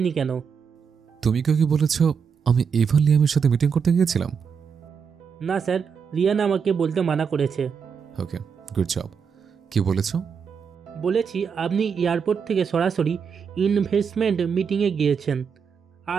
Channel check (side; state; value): left; quieter; 6.4 dB